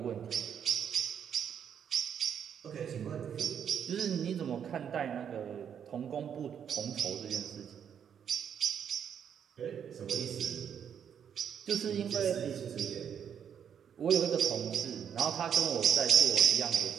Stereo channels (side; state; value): left; quieter; 8.3 dB